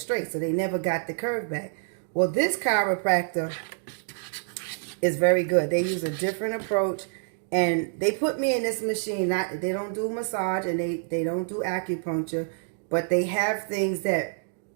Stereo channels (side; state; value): left; silent; 60 dB below the other